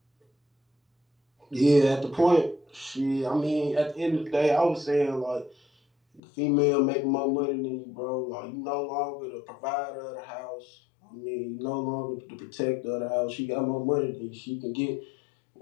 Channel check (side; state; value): right; drops out; at 6.2 s